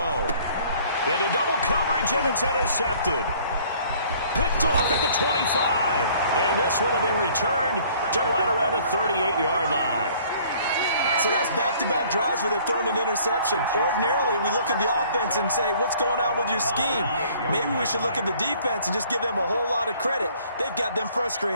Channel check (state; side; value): inverted; both; correlation -0.56